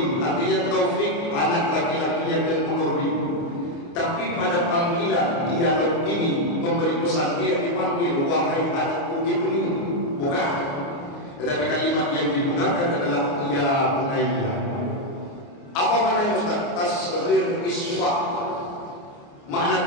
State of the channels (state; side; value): late; right; 29 ms